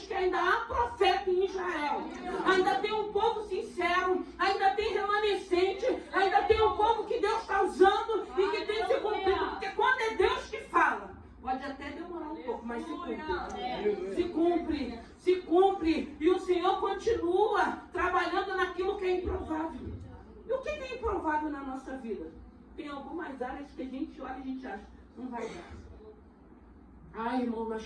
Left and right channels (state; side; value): identical; both; correlation 1.00